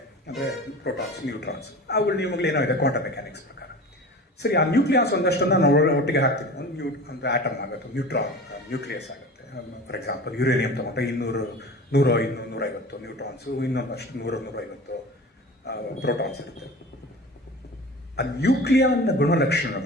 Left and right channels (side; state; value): both; normal; correlation 0.36